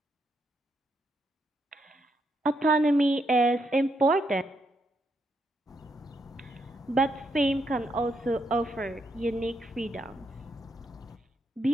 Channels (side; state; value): both; normal; correlation 0.79